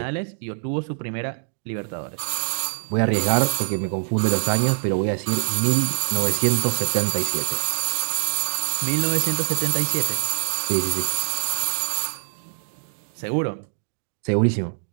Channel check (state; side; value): silent; left; digital silence